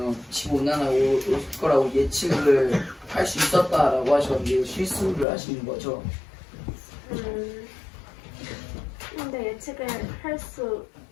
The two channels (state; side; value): drops out; right; at 5.2 s